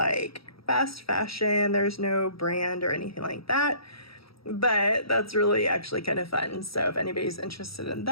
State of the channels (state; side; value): late; right; 0.76 ms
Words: fast fashion. There's no brand or anything like that, but that's really actually kind of fun. So if anybody's interested in